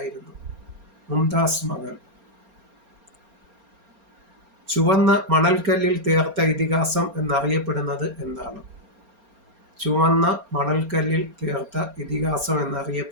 മുംതാസ് മഹൽ. ചുവന്ന മണൽക്കല്ലിൽ തീർത്ത ഇതിഹാസം എന്നറിയപ്പെടുന്നത് എന്താണ്? ചുവന്ന മണൽക്കല്ലിൽ തീർത്ത ഇതിഹാസം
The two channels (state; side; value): late; left; 4.3 ms